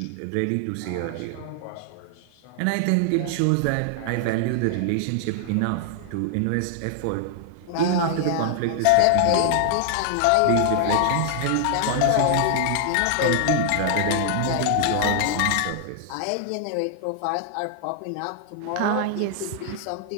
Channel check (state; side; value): different; both; correlation 0.00